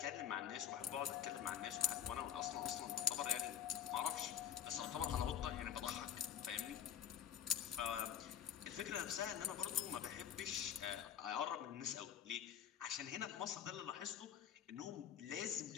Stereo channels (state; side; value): quieter; right; 9.5 dB